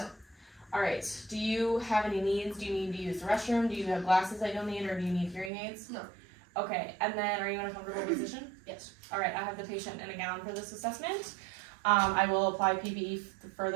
All right. Do you have any needs? Do you need to use the restroom? Do you have glasses that you'll need, or do you need hearing aids? No. Okay. And then are you in a comfortable position? Yes. All right. I have the patient in a gown for this assessment. I will apply PPE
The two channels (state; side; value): drops out; left; at 5.5 s